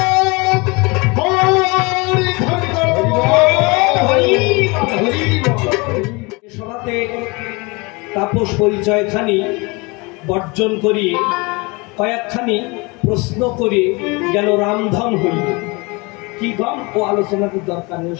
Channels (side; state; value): right; quieter; 27.1 dB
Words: সভাতে তাপস পরিচয় খানি বর্জন করিয়ে কয়েকখানি প্রশ্ন করে গেল রামধন হইল। কি গম ও আলোচনার দরকার নেই,